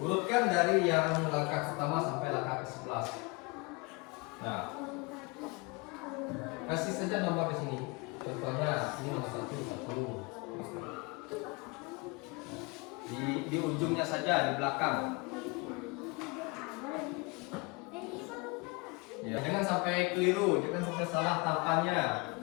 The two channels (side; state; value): right; quieter; 27.7 dB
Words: dari yang langkah pertama sampai langkah ke-11. Nah, kasih saja nomor di sini. Contohnya ini nomor 1. Di ujungnya saja, di belakang. Ya, jangan sampai keliru, jangan sampai salah tahapannya.